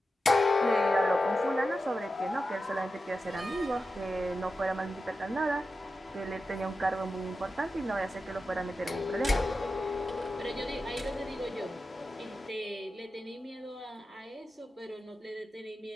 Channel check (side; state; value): both; normal; correlation 0.91